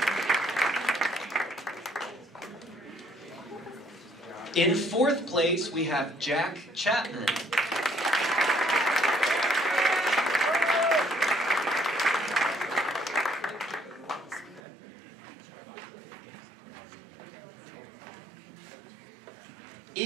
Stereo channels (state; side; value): drops out; left; at 14.6 s